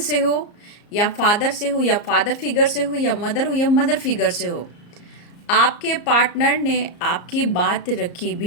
से हो या फादर से हो या फादर फिगर से हो या मदर फिगर से हो, आपके पार्टनर ने आपकी बात रखी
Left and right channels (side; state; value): right; late; 34 ms